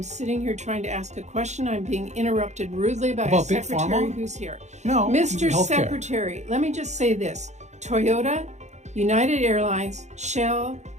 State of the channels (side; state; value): left; late; 0.33 ms